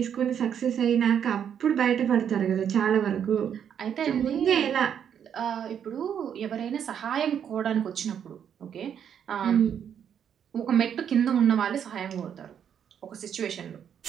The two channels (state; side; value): quieter; left; 8.6 dB